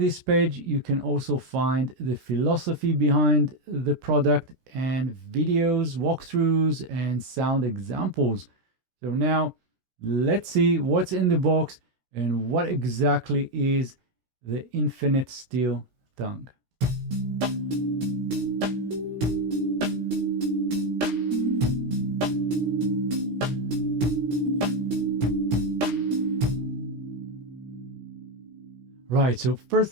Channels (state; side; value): late; left; 16 ms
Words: page, you can also find the philosophy behind the product and videos, walkthroughs, and sound examples. So now let's see what's in the box and what exactly is the Infinite Steel Tongue. Right, so